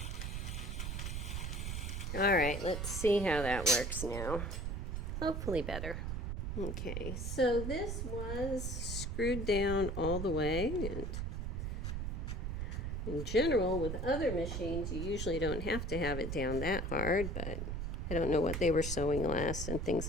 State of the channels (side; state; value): right; noise; rumble, 3 dB below the sound